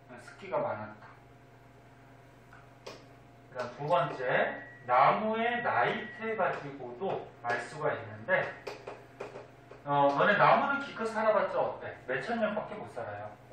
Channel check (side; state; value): both; identical; correlation 1.00